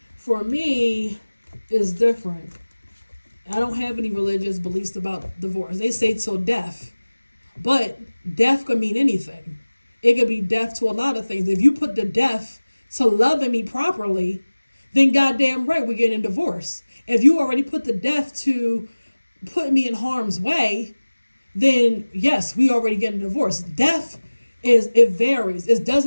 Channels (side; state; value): both; inverted; correlation -1.00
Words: for me, it's different. I don't have any religious beliefs about divorce. They say till death, but death could mean anything. It could be death to a lot of things. If you put the death to loving me properly, then goddamn right we're getting a divorce. If you already put the death to put me in harm's way, then yes, we already getting a divorce. Death it varies. It